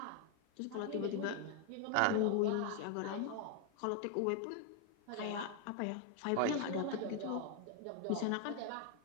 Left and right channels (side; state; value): both; different; correlation 0.01